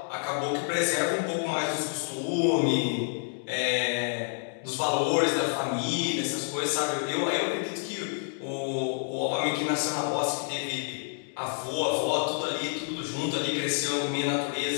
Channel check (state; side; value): silent; right; 59 dB below the other